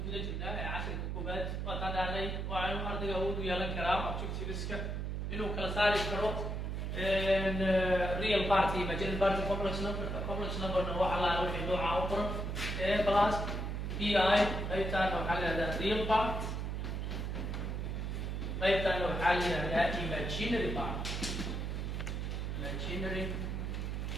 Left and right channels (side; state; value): right; noise; hum, 2 dB below the sound